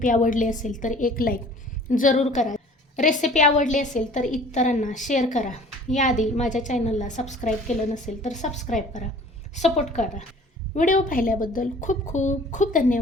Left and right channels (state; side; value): normal; both; correlation 0.49